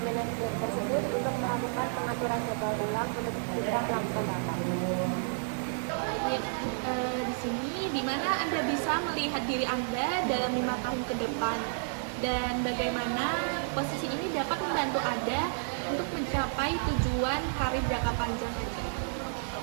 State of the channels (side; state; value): left; silent; digital silence